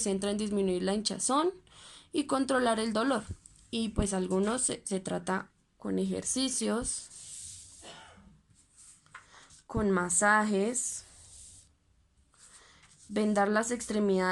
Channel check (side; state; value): both; identical; correlation 1.00